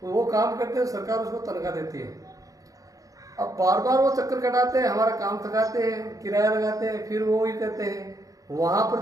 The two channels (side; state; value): left; late; 0.17 ms